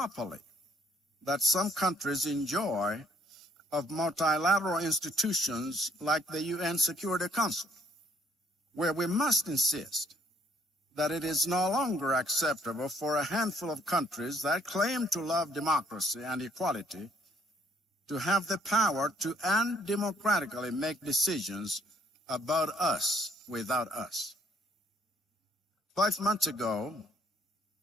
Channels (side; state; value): both; normal; correlation 0.65